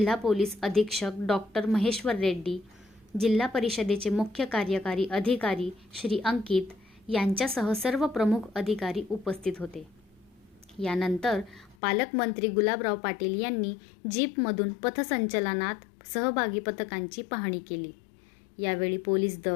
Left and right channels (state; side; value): drops out; right; at 11.8 s